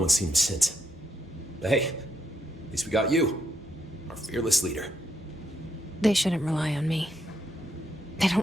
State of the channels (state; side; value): normal; both; correlation 0.76